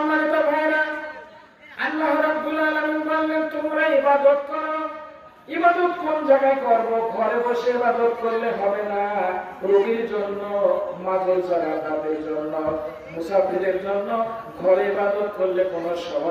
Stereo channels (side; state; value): both; identical; correlation 1.00